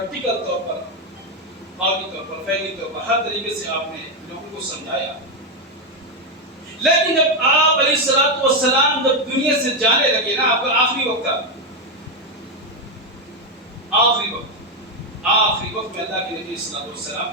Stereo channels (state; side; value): normal; both; correlation 0.06